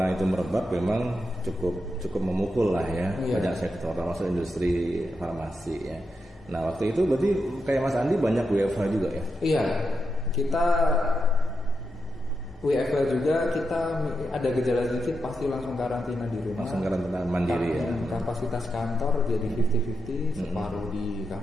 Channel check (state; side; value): normal; both; correlation 0.86